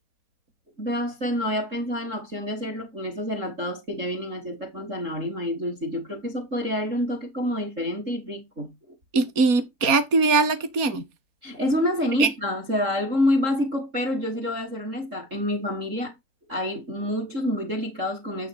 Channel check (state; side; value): late; left; 4.2 ms